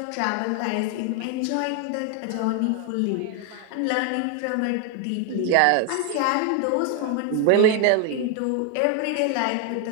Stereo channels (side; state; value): both; different; correlation 0.00